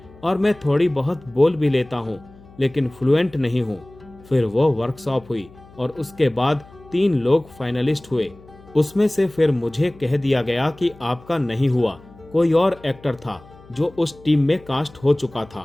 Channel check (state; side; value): noise; left; hum, 23 dB below the sound